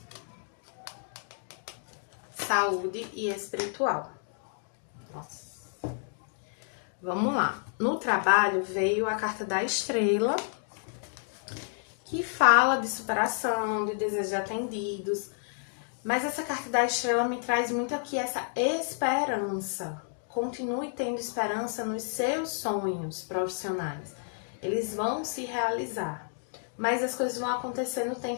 saúde e espiritual. Nossa. Vamos lá. No trabalho veio a carta da estrela, que fala de superação, de desejos atendidos. Mas essa carta da estrela me traz muito aqui essa esperança. Continue tendo esperança nos seus sonhos profissionais. Eles vão se realizar. Mas as coisas vão acontecer no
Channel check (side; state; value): right; silent; digital silence